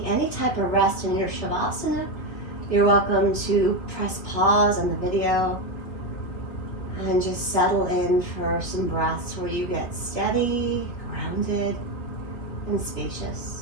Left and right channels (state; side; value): late; right; 3.3 ms